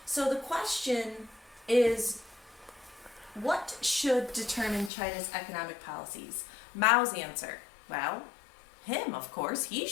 So the question is, what should determine China's economic policies? Mao's answer, well, him, of course. He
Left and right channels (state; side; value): drops out; right; at 4.9 s